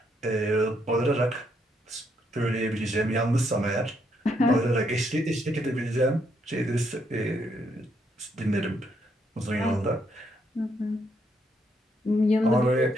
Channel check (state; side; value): normal; both; correlation 0.75